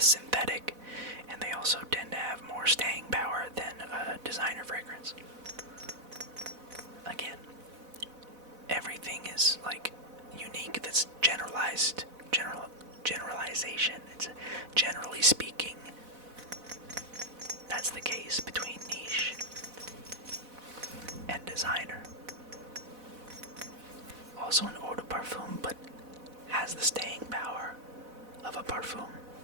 synthetic, and they also tend to have more staying power than a designer fragrance. Again, everything is like unique. That's generalization. It's generally speaking. That's the case between niche and designer. Also an eau de parfum, but has the staying power of a parfum.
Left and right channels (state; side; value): late; left; 4.0 ms